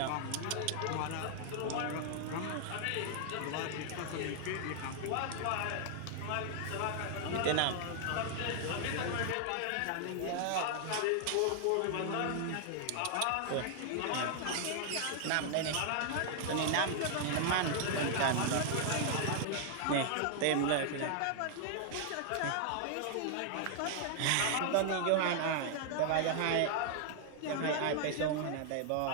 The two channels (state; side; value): different; both; correlation 0.00